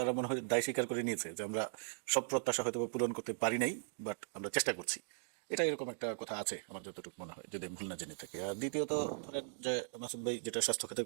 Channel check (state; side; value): silent; left; digital silence